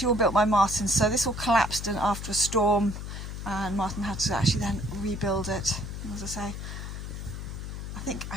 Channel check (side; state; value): left; noise; hum, 7 dB below the sound